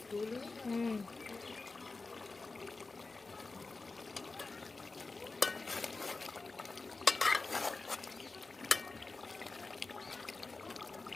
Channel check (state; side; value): quieter; right; 3.7 dB